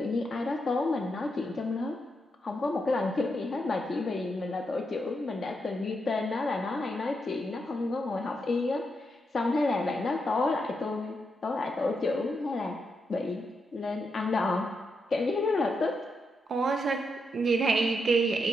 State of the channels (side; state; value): both; normal; correlation 0.83